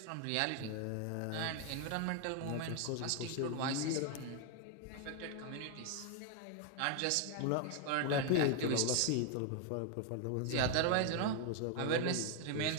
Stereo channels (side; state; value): both; different; correlation 0.00